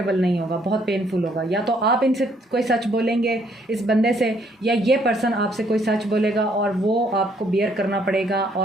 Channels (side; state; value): both; normal; correlation 0.67